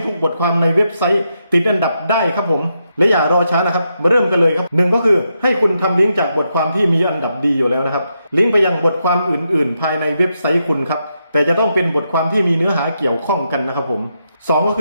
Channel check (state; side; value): inverted; both; correlation -0.83